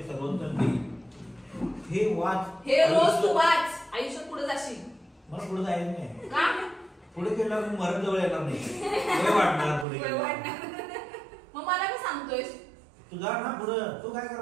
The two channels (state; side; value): drops out; left; at 9.9 s